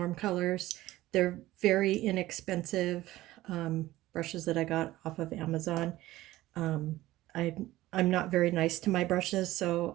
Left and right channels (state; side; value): quieter; left; 16.5 dB